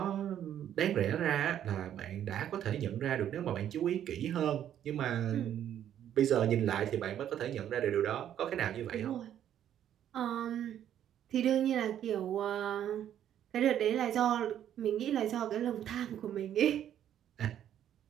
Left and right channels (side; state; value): left; quieter; 10.5 dB